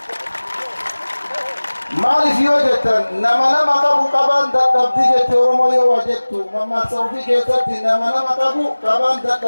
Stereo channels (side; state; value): both; inverted; correlation -1.00